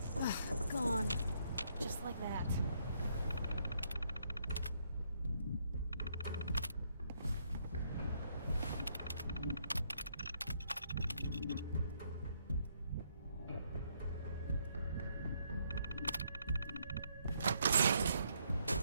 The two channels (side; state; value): both; inverted; correlation -0.72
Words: Ugh, gone. Just like that.